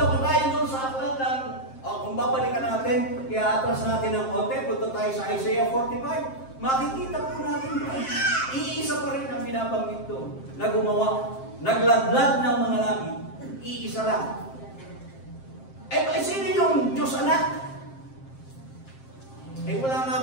pa tayo doon sa aklat ng, kung babalikan natin, kaya atras natin ng konti, punta tayo sa Isaiah 45, makikita po natin doon. Iisa pa rin ang binabanggit doon na gumawa, nagladlad ng mga langit. Iisa lang. Sino yung Diyos Anak? Wala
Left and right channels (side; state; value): right; late; 7.6 ms